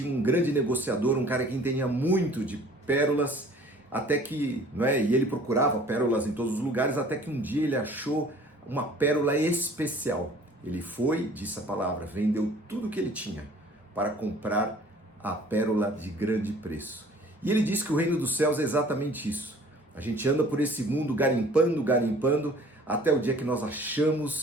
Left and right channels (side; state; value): both; normal; correlation 0.51